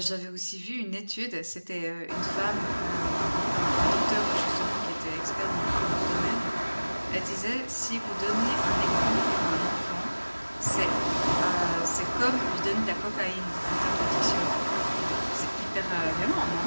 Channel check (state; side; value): inverted; both; correlation -1.00